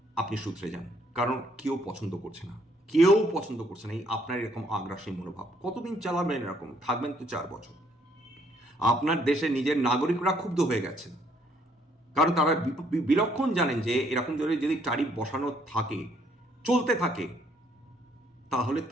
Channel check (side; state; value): both; normal; correlation 0.67